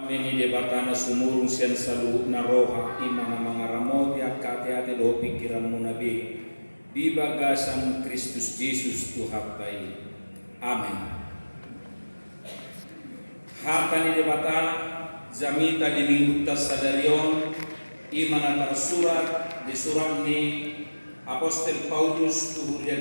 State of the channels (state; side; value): inverted; both; correlation -1.00